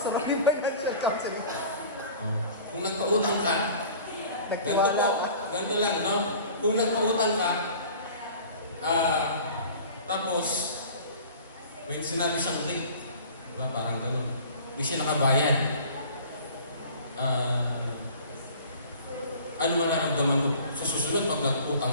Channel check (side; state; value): both; inverted; correlation -0.45